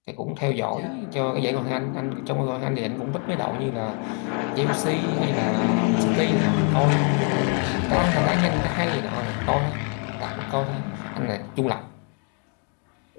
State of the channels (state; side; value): quieter; right; 39.4 dB